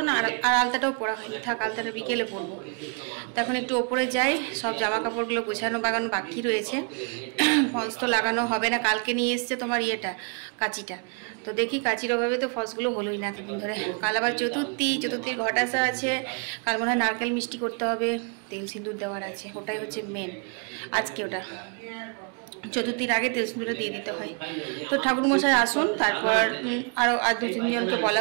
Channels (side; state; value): left; quieter; 39.3 dB